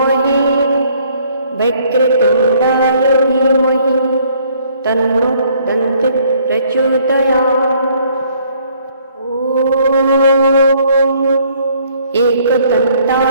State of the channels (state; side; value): inverted; both; correlation -0.63